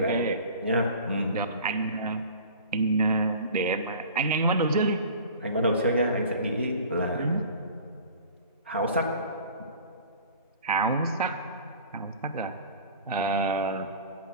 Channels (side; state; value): both; inverted; correlation -0.43